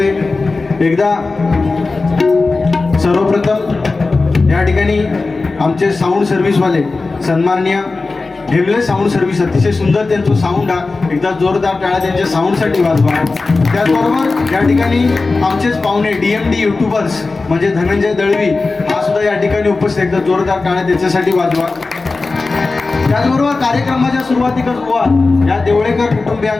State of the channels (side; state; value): right; quieter; 3.7 dB